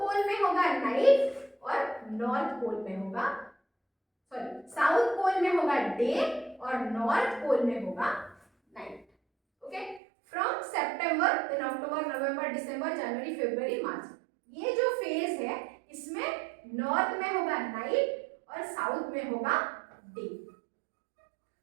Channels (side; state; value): left; drops out; at 10.0 s